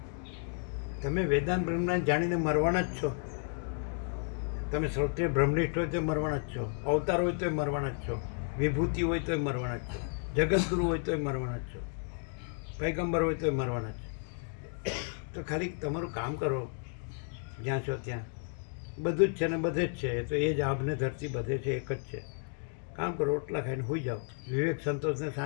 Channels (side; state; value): right; silent; 56 dB below the other